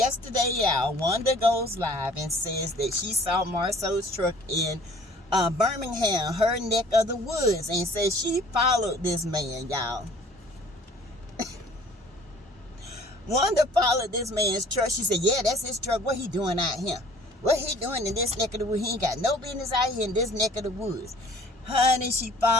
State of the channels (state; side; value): normal; both; correlation 0.53